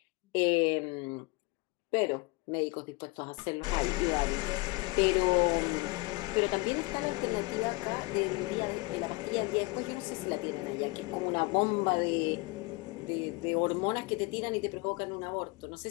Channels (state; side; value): quieter; right; 24.8 dB